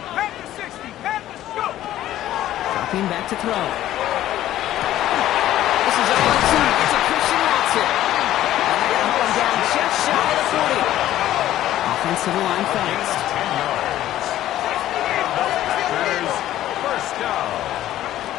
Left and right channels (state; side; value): quieter; right; 13.4 dB